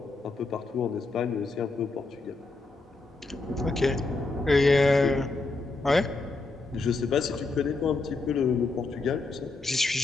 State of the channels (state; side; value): quieter; right; 3.5 dB